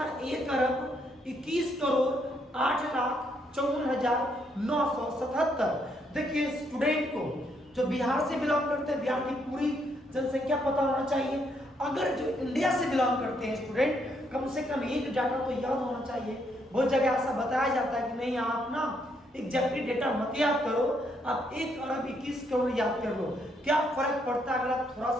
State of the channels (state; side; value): normal; both; correlation 0.74